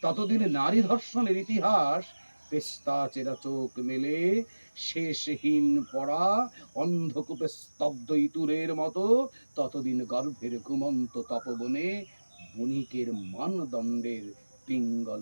ততদিন নারী ধর্ষণের ইতিহাস পেস্তা চেরা চোখ মেলে শেষহীন পড়া অন্ধকূপে স্তব্ধ ইতুরের মতো। ততদিন গর্ভের ঘুমন্ত তপবনে বণিকের মানদণ্ডের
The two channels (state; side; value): inverted; both; correlation -1.00